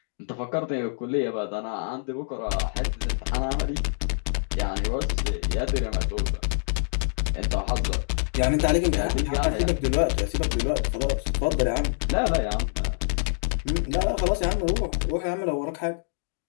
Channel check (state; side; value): silent; right; digital silence